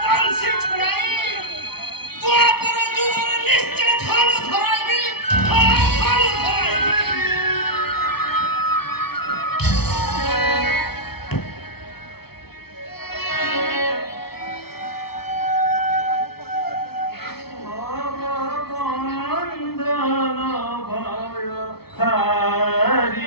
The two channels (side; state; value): right; late; 0.96 ms